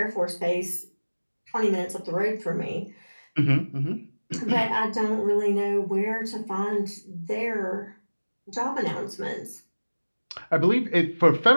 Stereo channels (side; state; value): both; inverted; correlation -1.00